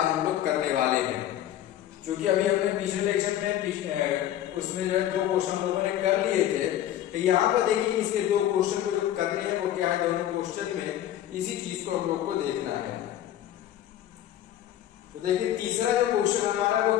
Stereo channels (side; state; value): right; quieter; 12.0 dB